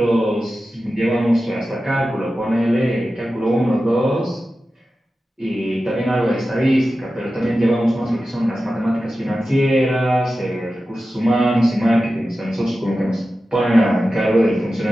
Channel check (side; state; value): both; normal; correlation 0.93